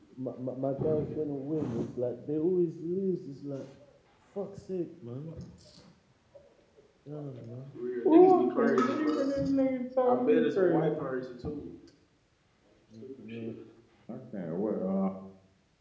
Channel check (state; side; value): identical; both; correlation 1.00